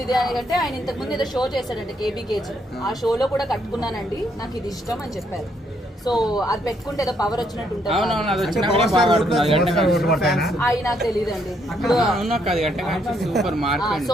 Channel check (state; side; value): normal; both; correlation 0.72